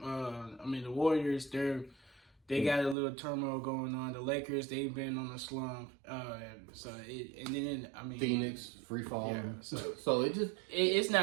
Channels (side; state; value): left; drops out; at 3.0 s